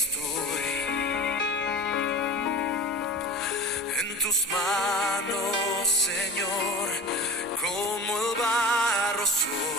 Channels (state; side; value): normal; both; correlation 0.34